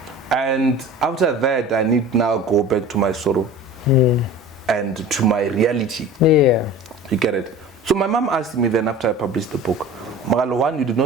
And after that, I need now go back to my sorrow and to my reality. You get it? So my mom asked me then after I published the book, Mogale, one, you did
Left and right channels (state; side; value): normal; both; correlation 0.39